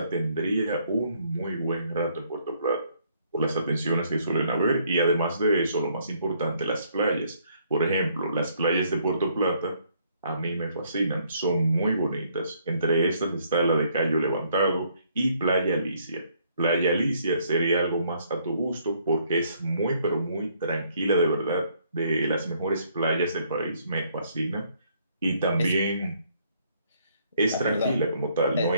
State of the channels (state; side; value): inverted; both; correlation -0.68